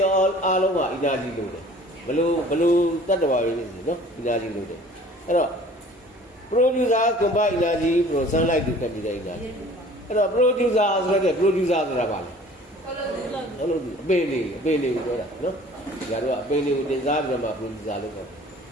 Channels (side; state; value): both; normal; correlation 0.49